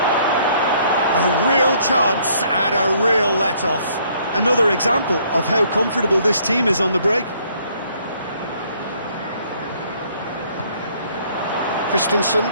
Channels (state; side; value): inverted; both; correlation -0.64